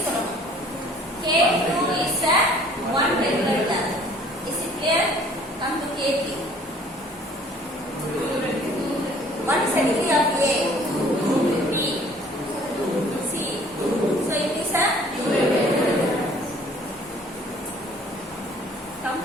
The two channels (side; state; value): both; normal; correlation 0.54